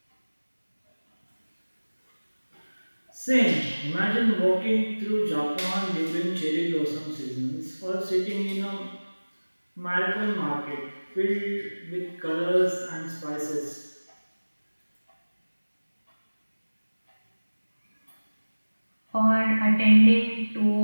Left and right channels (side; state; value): both; inverted; correlation -1.00